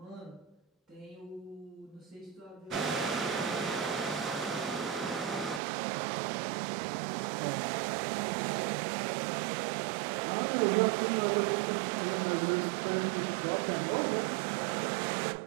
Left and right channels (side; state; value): left; drops out; at 5.6 s